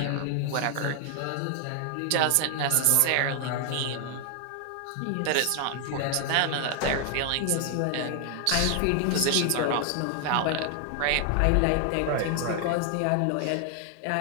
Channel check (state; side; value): different; both; correlation 0.00